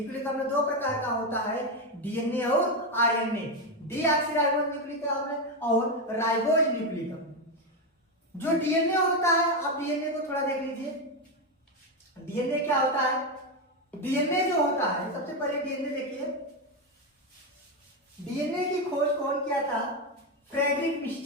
अम्ल दो प्रकार का होता है, डीएनए और आरएनए, डीऑक्सीराइबोज न्यूक्लिक अम्ल और राइबोज न्यूक्लिक अम्ल। जो डीएनए होता है, आप डीएनए को थोड़ा देख लीजिए। डीएनए क्या होता है? डीएनए जो होता है, सबसे पहले डीएनए देखिए। डीएनए की खोज कौन किया था? Frederick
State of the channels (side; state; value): both; normal; correlation 0.09